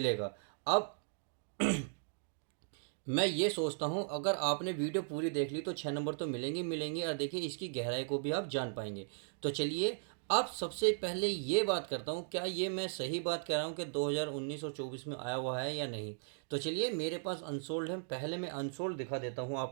अब मैं ये सोचता हूँ, अगर आपने वीडियो पूरी देख ली तो 6 नंबर तो मिलेंगे मिलेंगे, और देखिए इसकी गहराई को भी आप जान पाएंगे। तो चलिए, अब सबसे पहले ये बात करता हूँ, क्या ये मैं सही बात कह रहा हूँ कि 2019 और 24 में आया हुआ है या नहीं। तो चलिए, मेरे पास अनसोल्ड है, पहले मैं अनसोल्ड दिखा देता हूँ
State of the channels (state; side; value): silent; left; digital silence